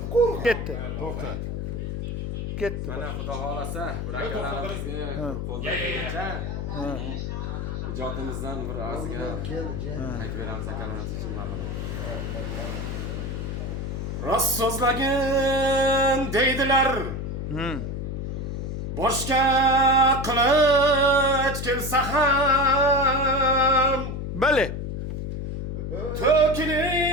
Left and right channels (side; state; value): left; noise; hum, 4 dB below the sound